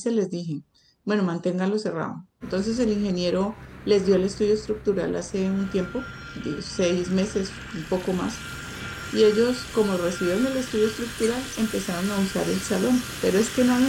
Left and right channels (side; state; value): both; identical; correlation 1.00